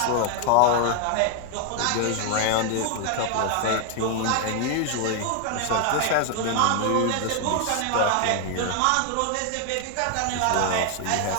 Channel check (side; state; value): both; different; correlation 0.00